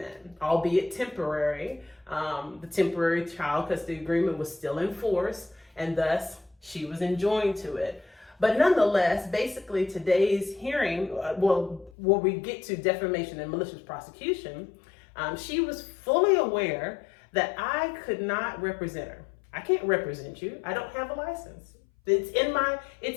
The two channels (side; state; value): right; drops out; at 11.9 s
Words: albeit temporary. The temporary child custody agreement was still in force, and thus she was enjoined to it. But nonetheless, basically today's hearing, where we get to defamation and malicious prosecution, she was fully aware that I could not represent her. I can't represent you. I don't have a license. It's